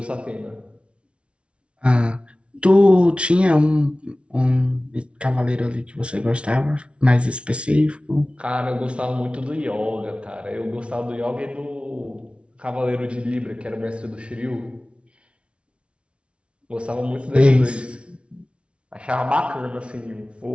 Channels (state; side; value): late; left; 0.060 ms